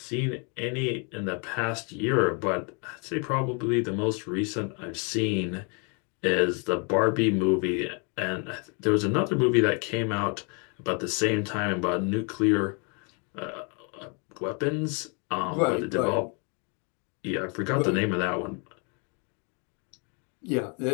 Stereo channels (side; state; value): right; quieter; 35.7 dB